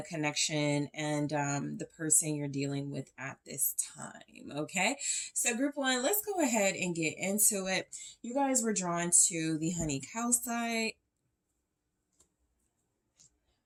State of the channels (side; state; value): both; identical; correlation 1.00